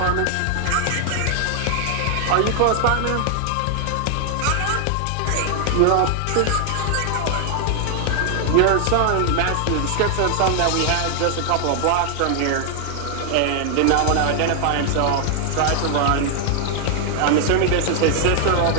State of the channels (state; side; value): different; both; correlation 0.00